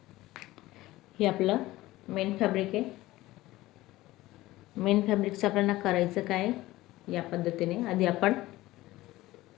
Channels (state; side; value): quieter; right; 17.6 dB